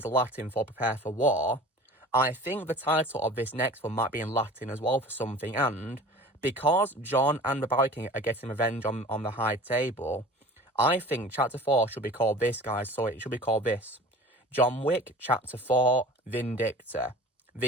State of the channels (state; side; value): normal; both; correlation 0.41